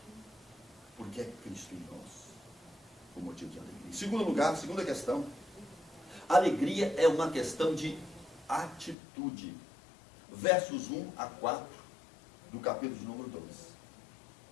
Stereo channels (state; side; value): drops out; right; at 9.0 s